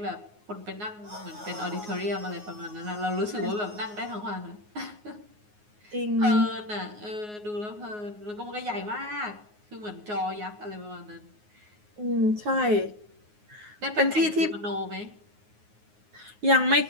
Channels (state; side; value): late; left; 9.5 ms